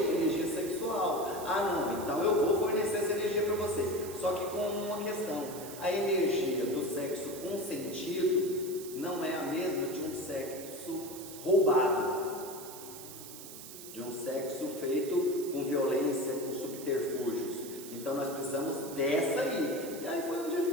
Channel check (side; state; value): right; noise; hiss, 13 dB below the sound